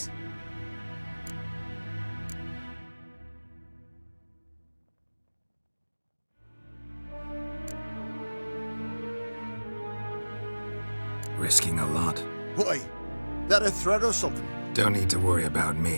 Risking a lot. Why? That a threat or something? Don't need to worry about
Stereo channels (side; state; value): both; inverted; correlation -1.00